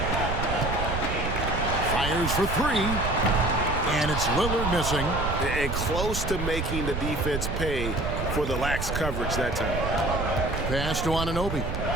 Fires for 3. And it's Lillard missing. And close to making the defense pay for the lax coverage that time. Pass to Anunoby.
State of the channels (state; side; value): noise; right; rumble, 3 dB below the sound